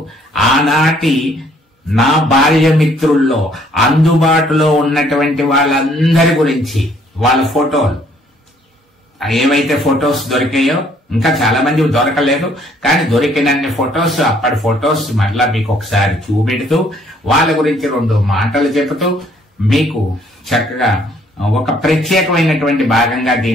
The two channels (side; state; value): both; normal; correlation 0.64